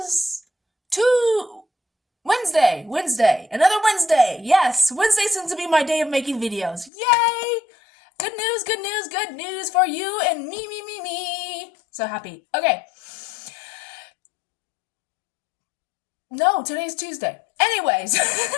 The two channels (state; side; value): drops out; right; at 6.9 s